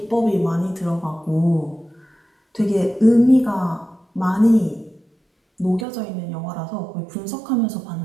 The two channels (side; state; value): left; drops out; at 5.9 s